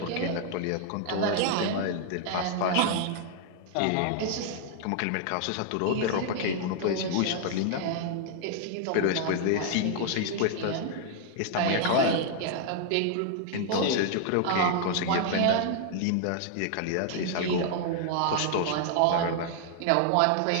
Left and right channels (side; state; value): both; different; correlation 0.00